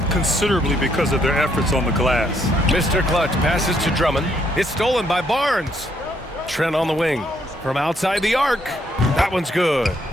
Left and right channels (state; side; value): normal; both; correlation 0.72